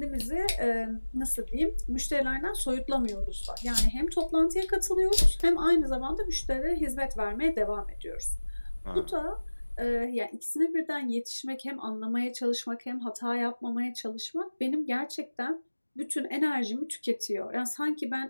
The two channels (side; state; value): both; inverted; correlation -1.00